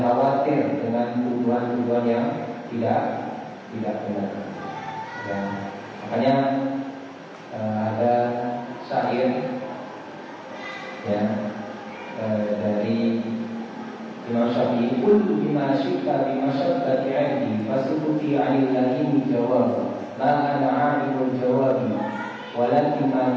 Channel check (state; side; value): identical; both; correlation 1.00